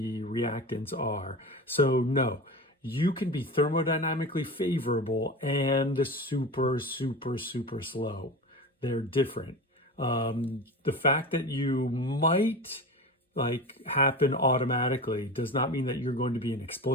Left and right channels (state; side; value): normal; both; correlation 0.29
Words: are. So no, you can be thermodynamically favorable and super, super, super slow. They're different. The fact that you might happen automatically does not mean that you're going to be an